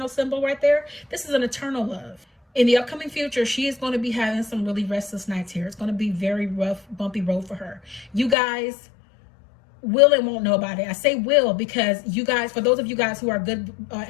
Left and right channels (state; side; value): drops out; right; at 8.3 s